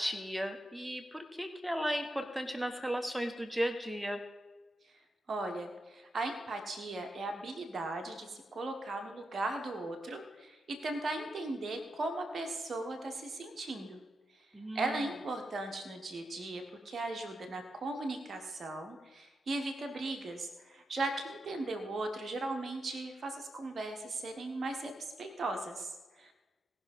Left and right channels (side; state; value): both; normal; correlation 0.86